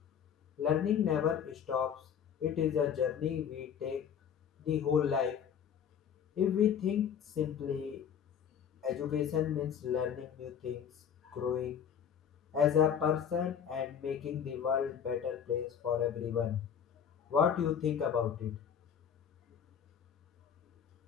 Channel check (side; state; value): right; quieter; 8.1 dB